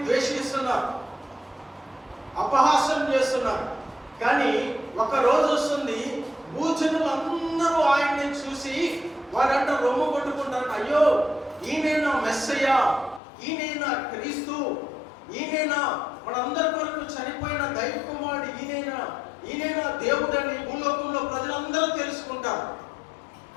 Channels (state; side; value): drops out; right; at 13.2 s